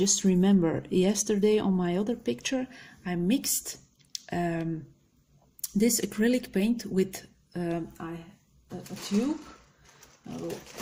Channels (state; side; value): identical; both; correlation 1.00